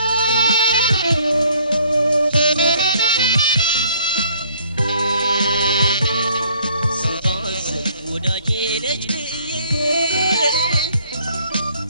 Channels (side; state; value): both; inverted; correlation -0.61